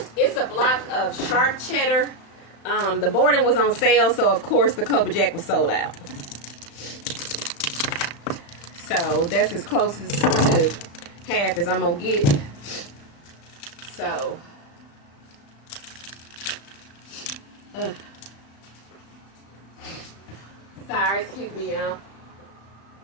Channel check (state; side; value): late; right; 35 ms